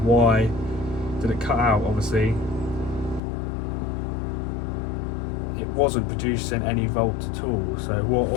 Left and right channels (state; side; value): drops out; right; at 3.2 s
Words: did it cut out? Obviously wasn't producing any volts at all. So